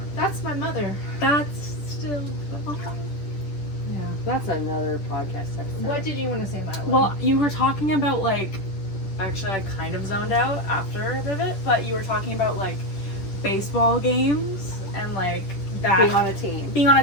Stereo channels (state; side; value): late; right; 10 ms